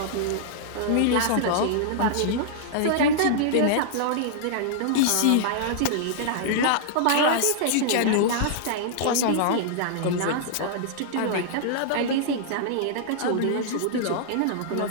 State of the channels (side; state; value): both; different; correlation -0.02